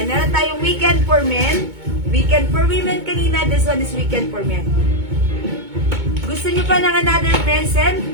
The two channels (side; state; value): left; late; 2.2 ms